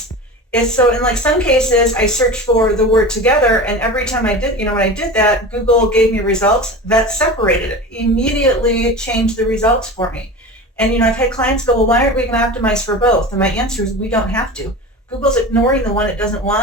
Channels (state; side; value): normal; both; correlation 0.31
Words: So in like some cases, I searched for the word together, and every time I did, when I did that, Google gave me results that separated it, immediately changed the results for me. And I've had clients go, well, why aren't we going to optimize for both? And my answer is we don't have to. Google's ignoring the one it doesn't